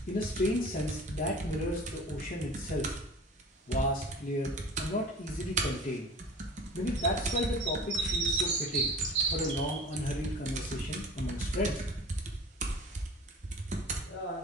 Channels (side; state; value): both; normal; correlation 0.41